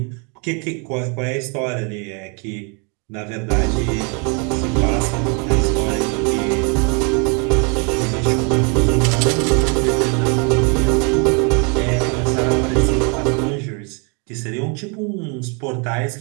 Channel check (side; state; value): left; quieter; 35.3 dB